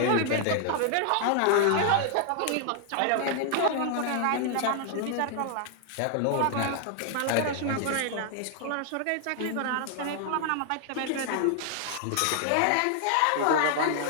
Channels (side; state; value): both; different; correlation 0.00